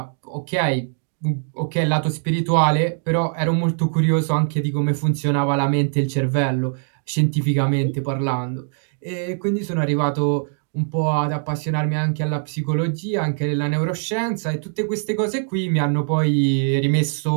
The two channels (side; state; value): left; silent; 64 dB below the other